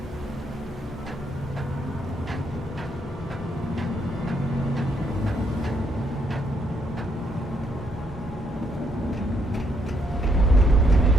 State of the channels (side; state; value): both; normal; correlation 0.73